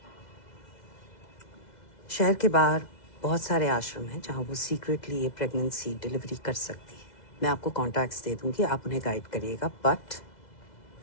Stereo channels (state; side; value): late; right; 2.0 ms